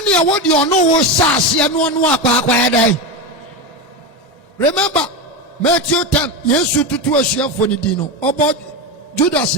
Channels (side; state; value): both; normal; correlation 0.16